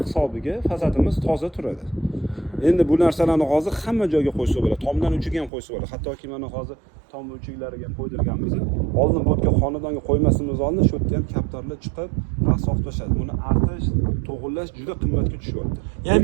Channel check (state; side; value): drops out; left; at 5.5 s